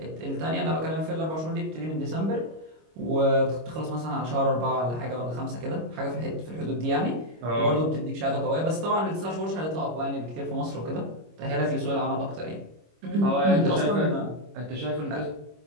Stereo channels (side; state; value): left; late; 25 ms